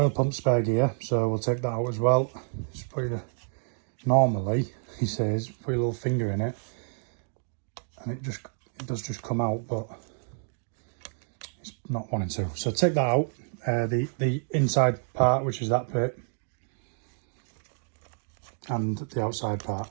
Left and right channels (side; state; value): left; silent; 59 dB below the other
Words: pump spare gear. So we'll take that out as well. Just put your, normally, he says, put your little finger in it, and it does just come out, but it's not wanting to. So take that out. The inside part, which is that bit, and the outside part,